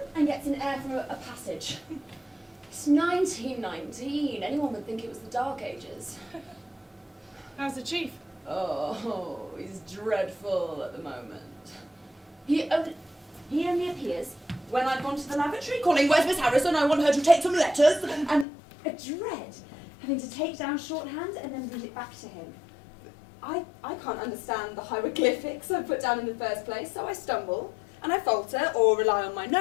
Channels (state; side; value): drops out; right; at 18.4 s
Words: and gets in air from a passage. It's 1919. Anyone would think it was the Dark Ages. How's the chief? Oh, he's dreadful at the moment. He only appears when I've gone to the lavatory calling, "Where's Miss Harrison? I want her to take some letters." And a dread having to take down shorthand and then read it back to him. I can't understand the hieroglyphics I put down in the first place, so I stumble and I falter or rely on my